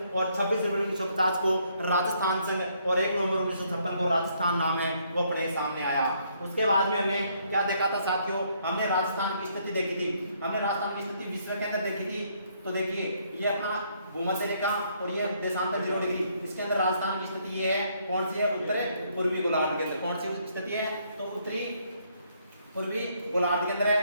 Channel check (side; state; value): both; inverted; correlation -0.69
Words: और 26 जनवरी 1950 को राजस्थान संघ और 1 नवंबर 1956 को राजस्थान नाम है वो अपने सामने आया। उसके बाद में हमने क्या देखा था साथियों, हमने राजस्थान की स्थिति देखी थी, हमने राजस्थान की स्थिति विश्व के अंदर देखी थी। तो देखिए ये अपना भूमध्य रेखा और ये देशांतर 0 डिग्री, इसके अंदर राजस्थान की स्थिति ये है, कौन सी है, उत्तर पूर्वी गोलार्ध के अंदर। कौन सी स्थिति है, तो उत्तरी पूर्वी गोलार्ध के अंदर